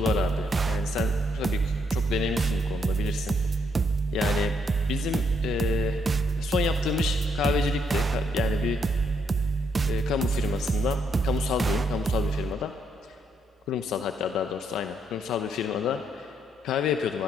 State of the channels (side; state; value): both; normal; correlation 0.74